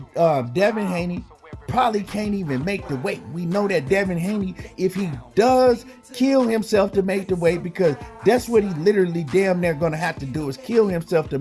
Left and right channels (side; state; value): both; identical; correlation 1.00